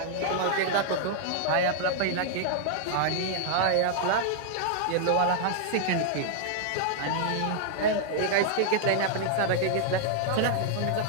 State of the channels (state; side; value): different; both; correlation -0.01